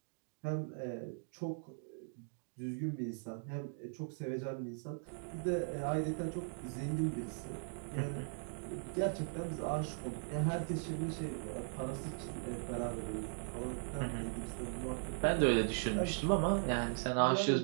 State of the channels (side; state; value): left; silent; digital silence